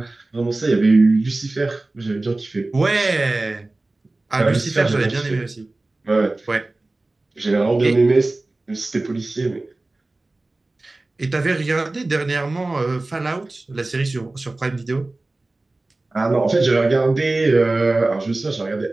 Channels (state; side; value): quieter; left; 3.0 dB